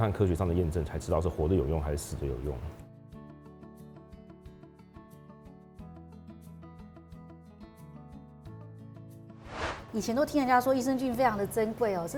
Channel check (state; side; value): identical; both; correlation 1.00